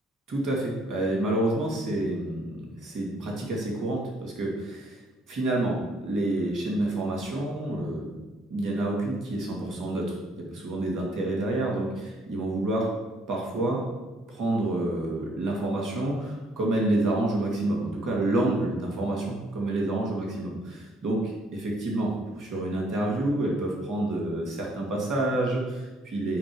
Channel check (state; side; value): normal; both; correlation 0.66